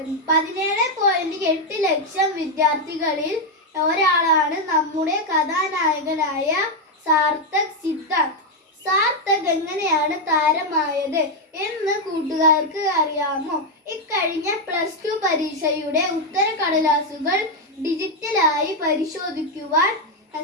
17.8 ലക്ഷം വിദ്യാർത്ഥികളിൽ ഒരാളാണ് നമ്മുടെ കഥാനായകനായ സാർത്ഥക് സിദ്ധാർത്ഥ്. സാർത്ഥക് എങ്ങനെയാണ് താരമായത് എന്ന് കൂട്ടുകാർക്ക് അറിയാമോ? ഇക്കഴിഞ്ഞ +2 പരീക്ഷയുടെ ഉത്തരക്കടലാസുകൾ ഡിജിറ്റലായി പരിശോധിക്കുവാൻ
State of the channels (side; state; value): both; normal; correlation 0.03